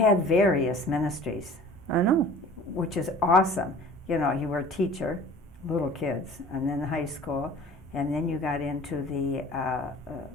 various ministries. I know. Which is awesome. You know, you were a teacher, little kids, and then high school, and then you got into the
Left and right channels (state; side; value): normal; both; correlation 0.45